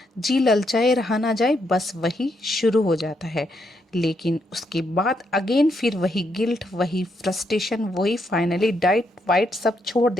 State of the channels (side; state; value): both; normal; correlation 0.77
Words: जी ललचाए रहा ना जाए, बस वही शुरू हो जाता है। लेकिन उसके बाद अगेन फिर वही गिल्ट, वही फ्रस्ट्रेशन, वही फाइनली डाइट वाइट सब छोड़